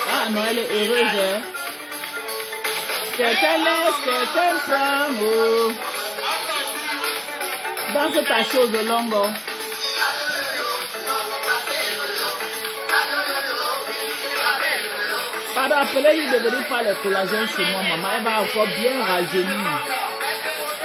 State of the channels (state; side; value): identical; both; correlation 1.00